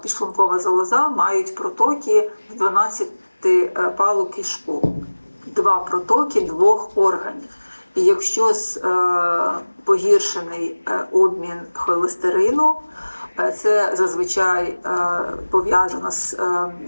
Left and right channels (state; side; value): inverted; both; correlation -1.00